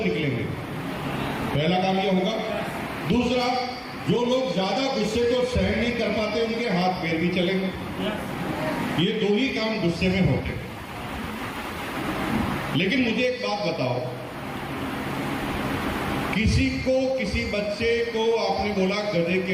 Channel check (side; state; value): both; identical; correlation 1.00